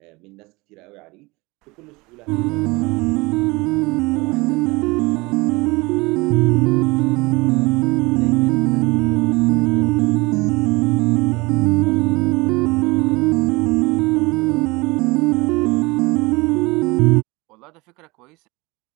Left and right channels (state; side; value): quieter; left; 24.2 dB